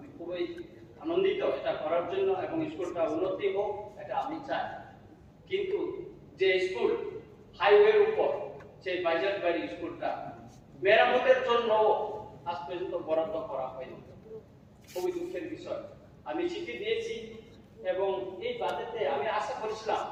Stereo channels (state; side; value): identical; both; correlation 1.00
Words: খুবই আনন্দিত এটা করার জন্য, এবং স্কুলটা উন্নতি হোক এটা আমি চাই। কিন্তু যে স্কুল হাইওয়ের উপর, সেই বাইজারবাড়ি স্কুলটা মেরামতের জন্য আজ পর্যন্ত বরাদ্দ করা হয়নি, খুবই দুঃখের বিষয়। আমি চিঠি দিয়েছি এবং এই বাজেটে আমি আশা করেছিলাম